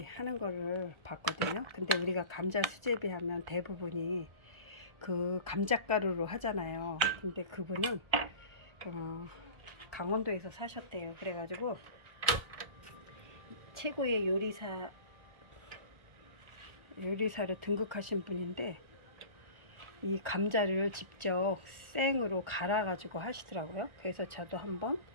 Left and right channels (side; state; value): left; late; 1.4 ms